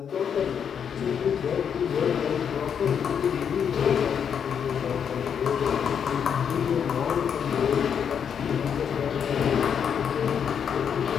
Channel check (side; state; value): right; quieter; 7.7 dB